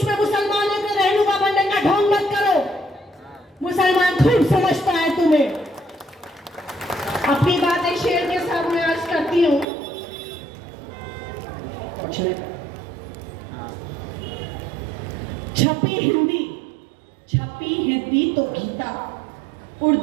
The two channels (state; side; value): drops out; left; at 9.7 s